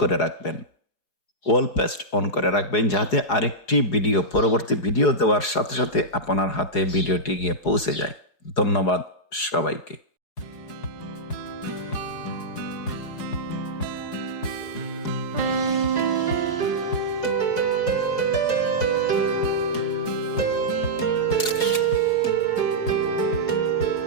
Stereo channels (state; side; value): late; right; 4.8 ms